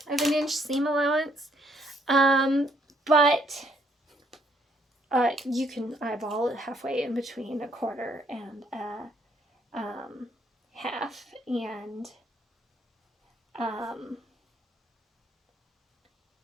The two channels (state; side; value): normal; both; correlation 0.69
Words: of an inch seam allowance. But you can eyeball it halfway in between 1/4 and a half, and